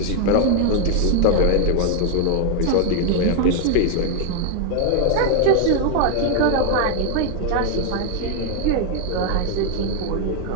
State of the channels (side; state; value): both; different; correlation 0.00